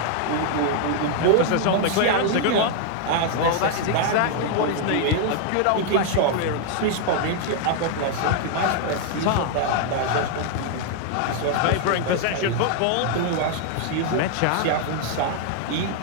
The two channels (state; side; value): different; both; correlation 0.00